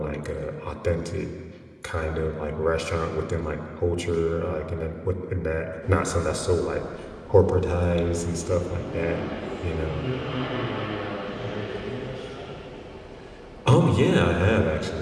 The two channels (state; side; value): identical; both; correlation 1.00